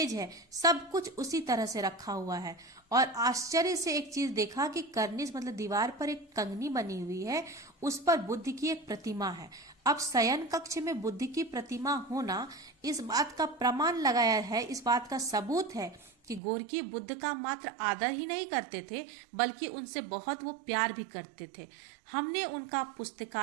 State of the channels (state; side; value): drops out; left; at 16.4 s